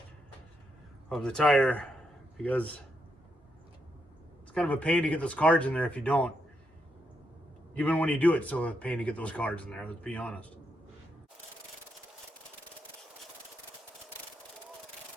of the tire, because it's kind of a pain to get those cards in there if you don't. Even when you do it, it's still a pain to get those cards in there, let's be honest.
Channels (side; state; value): both; normal; correlation 0.81